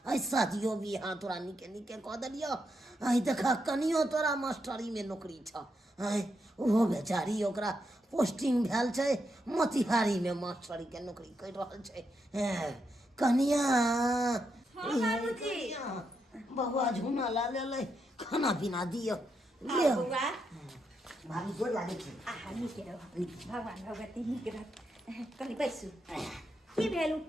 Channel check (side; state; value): both; normal; correlation 0.82